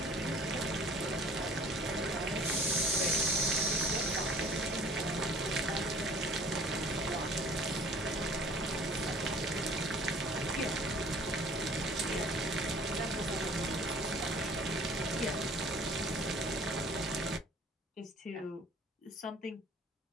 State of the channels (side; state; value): both; normal; correlation 0.51